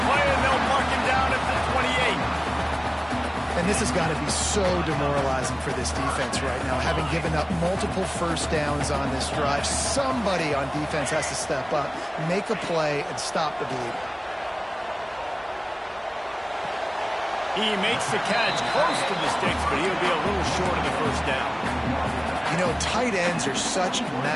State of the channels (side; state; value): both; identical; correlation 1.00